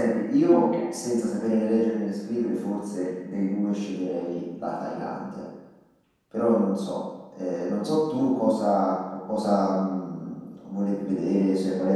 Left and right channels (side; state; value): both; identical; correlation 1.00